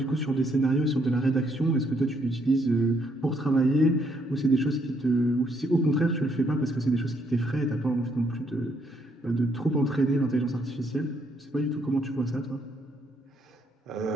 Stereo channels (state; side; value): normal; both; correlation 0.72